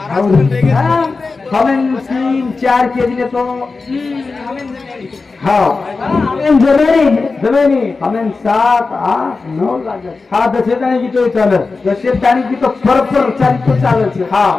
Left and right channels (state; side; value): quieter; right; 4.1 dB